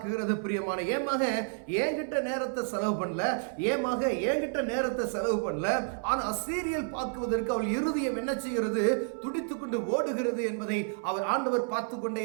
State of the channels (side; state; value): left; silent; 58 dB below the other